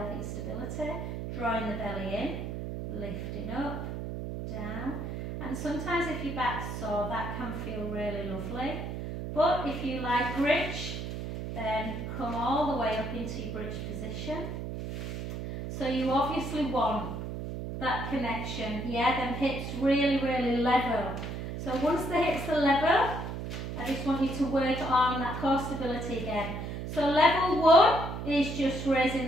stability, drawing the belly in, lifting up, down. And sometimes if your back's sore, that can feel really lovely. But if you like bridge, then come all the way up into your bridge position. So you obviously want that connection, yeah, them hips really, really level. So once the hips are level, I just want you to work on that core stability again. So level 1 is just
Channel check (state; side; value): noise; right; hum, 6 dB below the sound